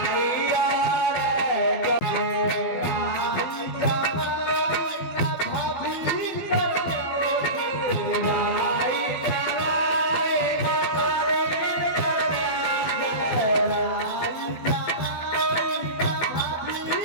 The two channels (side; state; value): right; late; 12 ms